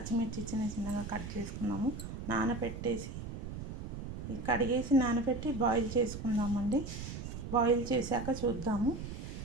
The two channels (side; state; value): right; noise; rumble, 7 dB below the sound